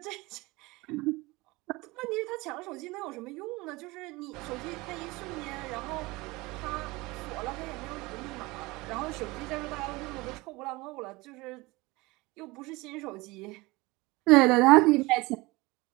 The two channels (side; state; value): left; quieter; 22.6 dB